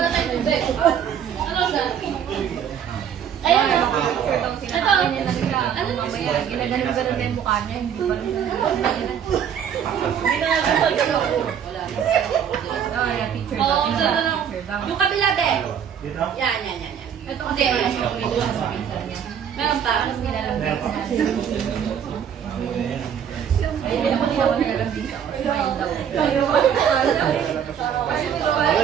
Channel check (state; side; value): quieter; left; 8.5 dB